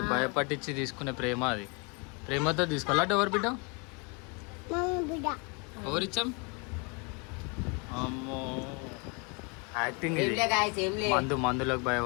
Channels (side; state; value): right; quieter; 31.9 dB